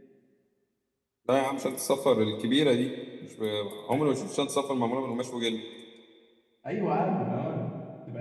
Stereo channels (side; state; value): both; identical; correlation 1.00